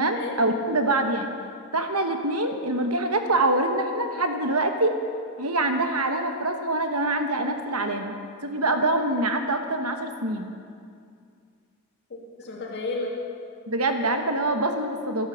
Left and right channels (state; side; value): normal; both; correlation -0.20